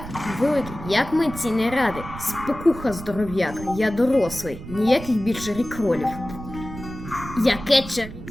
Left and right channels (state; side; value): noise; right; rumble, 12 dB below the sound